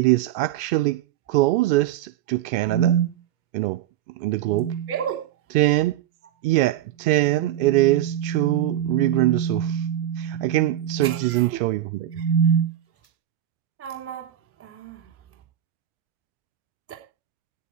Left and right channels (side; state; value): left; quieter; 12.2 dB